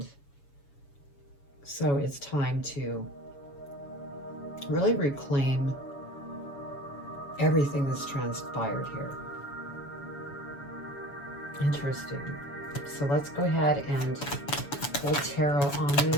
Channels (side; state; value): right; late; 7.0 ms